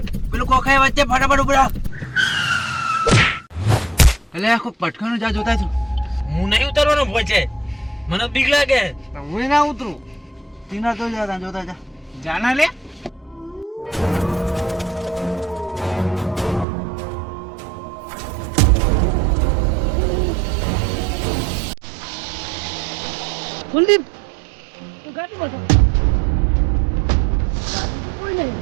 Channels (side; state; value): left; drops out; at 16.7 s